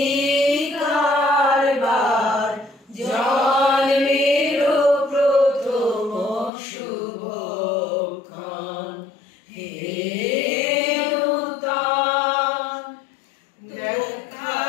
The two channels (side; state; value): right; drops out; at 6.5 s